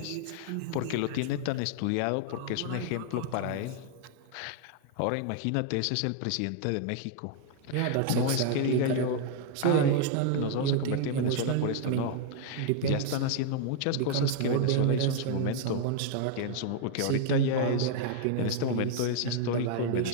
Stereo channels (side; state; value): both; different; correlation 0.00